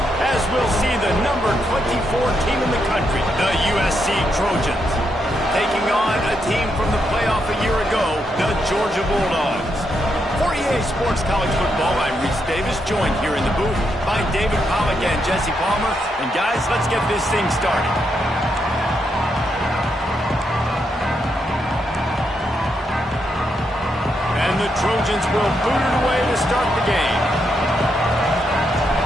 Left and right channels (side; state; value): both; normal; correlation 0.81